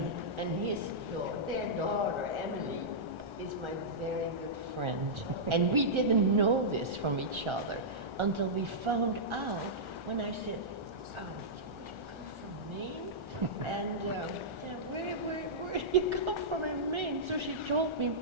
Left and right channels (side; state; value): left; late; 1.4 ms